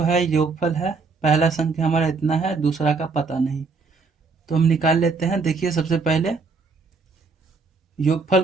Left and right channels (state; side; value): quieter; left; 4.4 dB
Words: है योगफल है, पहला संख्या हमारा इतना है, दूसरा का पता नहीं, तो हम निकाल लेते हैं। देखिए, सबसे पहले योगफल